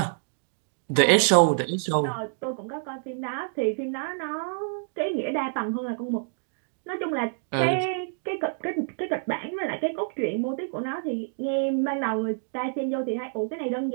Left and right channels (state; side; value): silent; left; digital silence